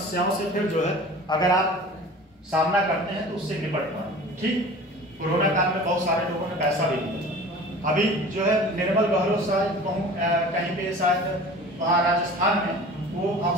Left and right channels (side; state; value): both; normal; correlation 0.41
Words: से फिर जो है अगर आप सामना करते हैं तो उससे निपट पाए। ठीक, कोरोना काल में बहुत सारे लोगों ने पैसा भी दिया। अभी जो है निर्मल बहरो शायद कहीं पे शायद वहाँ राजस्थान में वो